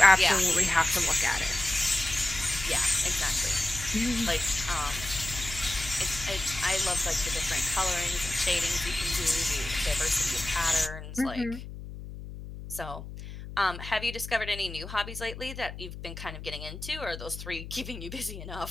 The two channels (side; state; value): left; noise; hum, 11 dB below the sound